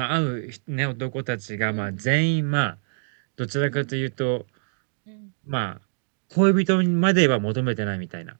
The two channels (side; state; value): left; silent; digital silence